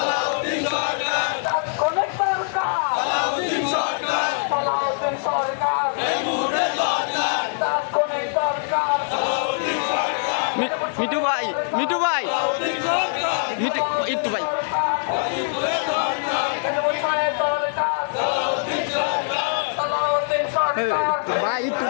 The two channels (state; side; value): silent; right; digital silence